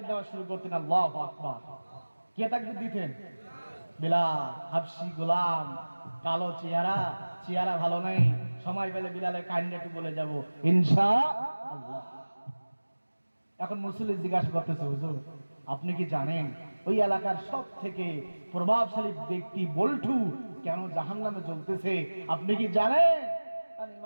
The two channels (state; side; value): inverted; both; correlation -1.00